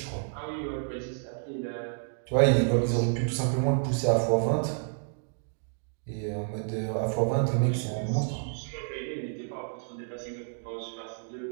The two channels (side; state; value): left; silent; digital silence